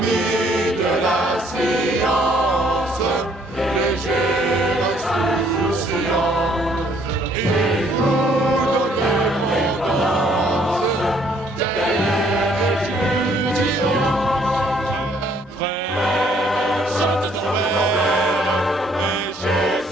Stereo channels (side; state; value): both; normal; correlation 0.64